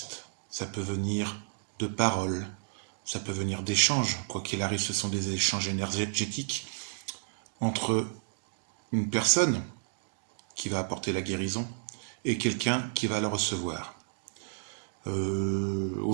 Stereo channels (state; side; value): silent; left; digital silence